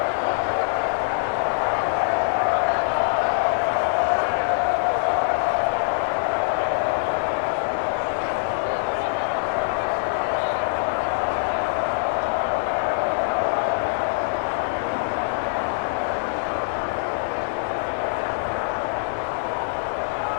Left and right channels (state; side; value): silent; right; digital silence